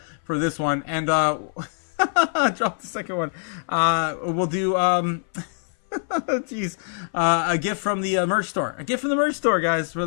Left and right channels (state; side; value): silent; right; 58 dB below the other